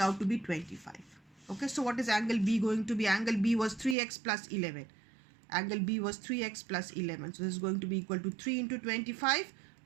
out to be 25. Okay, so what is angle B going to be? Angle B was 3x plus 11. Angle B was 3x plus 11. So this is going to be equal to 3 into 25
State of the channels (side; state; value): left; drops out; at 4.0 s